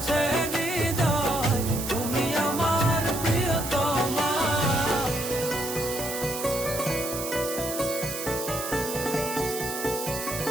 হৃদয় তুমি আমার প্রিয়তমা।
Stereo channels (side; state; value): right; noise; hiss, 6 dB below the sound